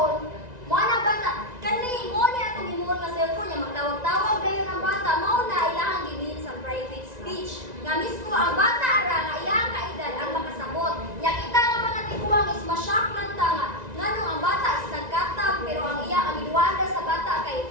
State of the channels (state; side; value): late; left; 1.9 ms